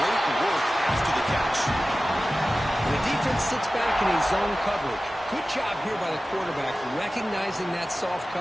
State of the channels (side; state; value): both; normal; correlation 0.96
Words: work after the catch. And the defense sits back in a zone coverage. Good job here by the quarterback, recognizing that soft